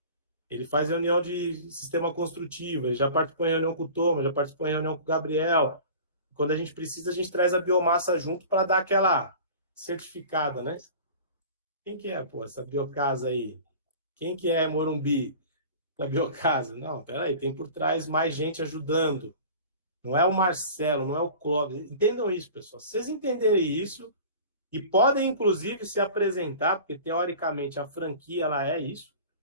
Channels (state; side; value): inverted; both; correlation -0.40